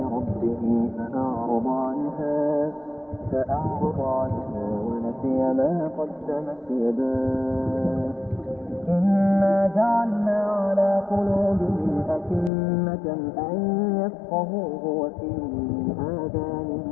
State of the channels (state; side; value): drops out; right; at 12.5 s